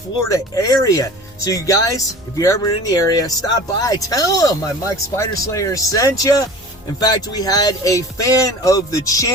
area. So you guys, if you're ever in the area, stop by, tell them my Mike Spider Slayer sent you. In fact, we had a fan of the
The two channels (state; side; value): normal; both; correlation 0.40